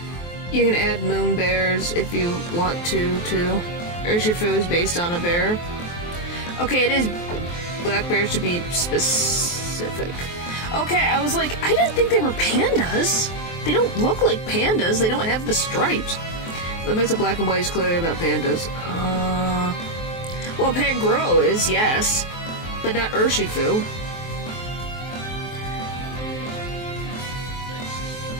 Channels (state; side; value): late; right; 23 ms